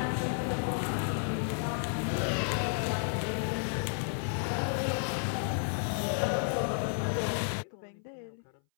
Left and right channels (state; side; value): silent; right; 56 dB below the other